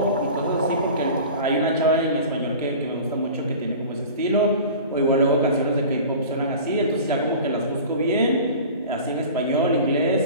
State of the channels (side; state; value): both; inverted; correlation -0.39